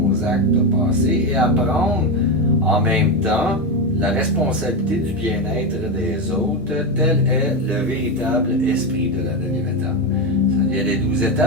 actes passés et à prendre en même temps la responsabilité du bien-être des autres, tel est le véritable esprit de la 9e étape. Il y a les 12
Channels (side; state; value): both; normal; correlation 0.12